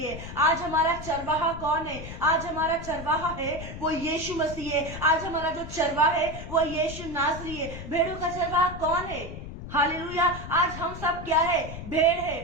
है। आज हमारा चरवाहा कौन है? आज हमारा चरवाहा है वो यीशु मसीह है। आज हमारा जो चरवाहा है वो यीशु नासरी है। भेड़ों का चरवाहा कौन है? हालेलुया। आज हम सब क्या है? भेड़ है।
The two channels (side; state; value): left; noise; rumble, 10 dB below the sound